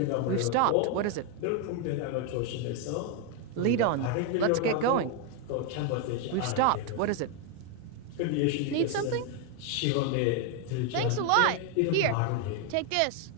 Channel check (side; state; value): both; different; correlation 0.01